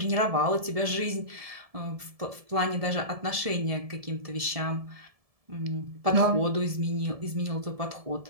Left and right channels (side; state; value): left; late; 1.7 ms